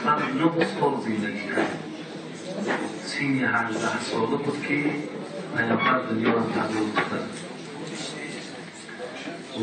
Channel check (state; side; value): identical; both; correlation 1.00